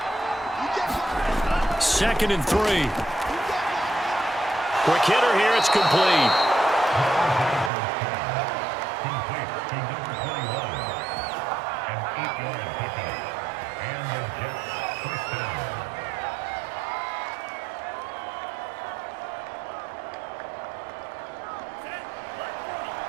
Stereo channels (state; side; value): drops out; left; at 7.7 s